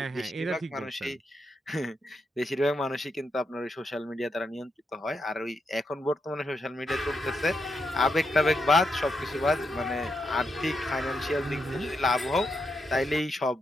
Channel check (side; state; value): both; normal; correlation 0.83